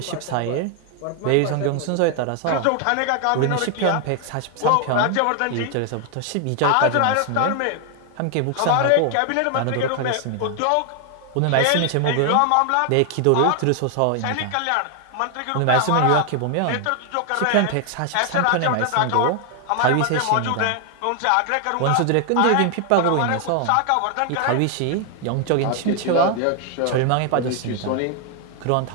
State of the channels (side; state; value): both; different; correlation 0.00